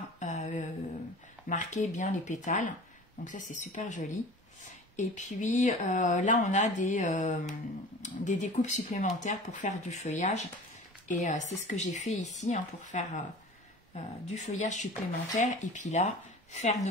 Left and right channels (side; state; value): both; normal; correlation 0.40